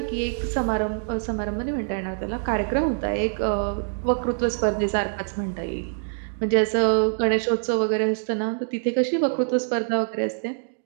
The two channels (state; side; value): silent; left; digital silence